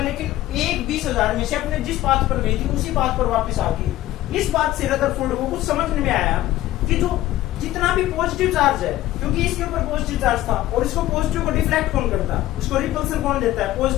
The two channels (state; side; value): quieter; right; 15.1 dB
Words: लेकिन एक 20,000 में से अपने जिस पाथ पर गई थी उसी पाथ पर वापस आ गई। इस बात से रदरफोर्ड को कुछ समझ में आया कि जो जितना भी पॉजिटिव चार्ज है, क्योंकि इसके ऊपर पॉजिटिव चार्ज था और इसको पॉजिटिव को डिफ्लेक्ट कौन करता है, उसको रिपल्सन कौन देता है,